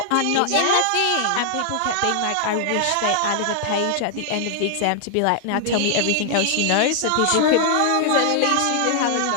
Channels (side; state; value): both; different; correlation 0.00